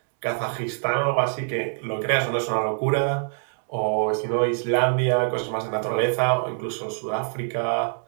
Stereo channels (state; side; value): silent; left; 57 dB below the other